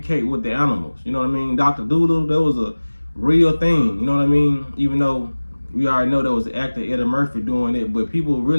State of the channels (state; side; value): inverted; both; correlation -1.00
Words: with the animals. You know what I mean? Dr. Doodle, that was a real thing. You know what I mean? Even though we already know there was an actor, Eddie Murphy, doing it, but people